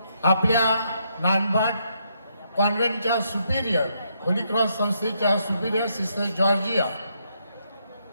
आपल्या नानभाट कॉन्व्हेंटच्या सुपिरियर होली क्रॉस संस्थेच्या सुपिरियर सिस्टर जॉर्जिया,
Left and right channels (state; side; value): inverted; both; correlation -0.76